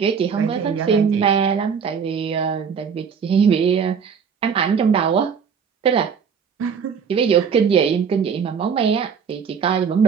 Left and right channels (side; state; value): left; quieter; 6.6 dB